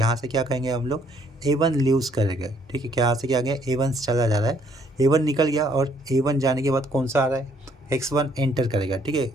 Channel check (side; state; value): both; normal; correlation 0.66